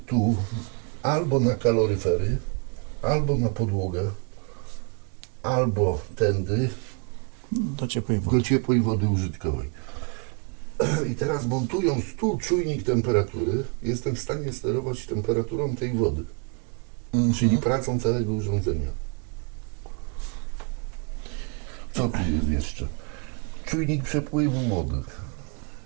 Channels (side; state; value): left; quieter; 35.2 dB